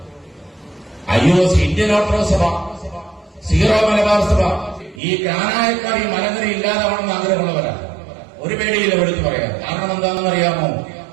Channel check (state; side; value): drops out; left; at 5.0 s